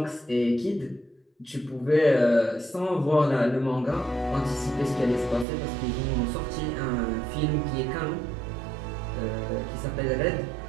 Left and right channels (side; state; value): left; drops out; at 5.5 s